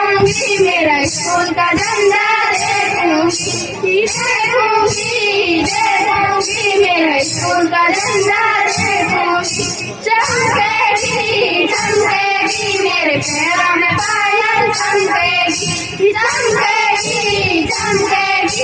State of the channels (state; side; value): identical; both; correlation 1.00